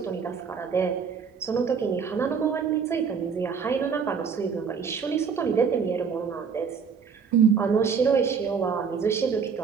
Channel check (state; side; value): quieter; left; 6.2 dB